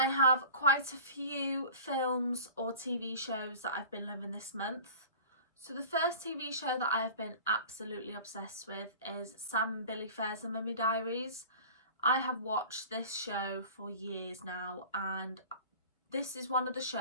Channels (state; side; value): inverted; both; correlation -0.40